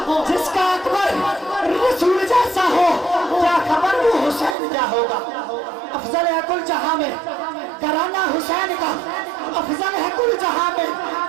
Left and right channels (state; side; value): drops out; left; at 4.5 s